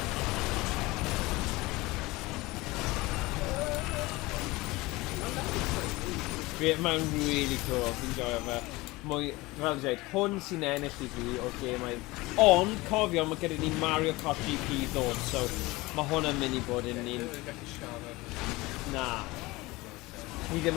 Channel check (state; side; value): quieter; right; 21.4 dB